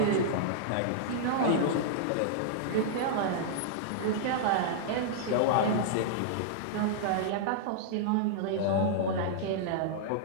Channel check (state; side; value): different; both; correlation -0.02